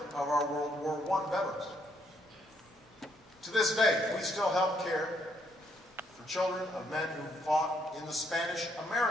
of our World War I veterans. To this day, we still help care for children of men who fought in the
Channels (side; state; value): both; normal; correlation 0.72